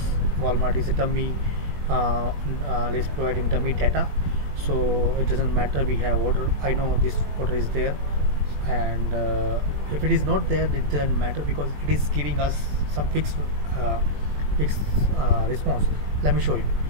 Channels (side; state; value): left; late; 21 ms